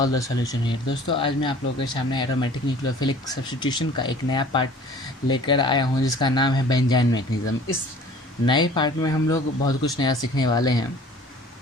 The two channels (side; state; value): both; normal; correlation 0.48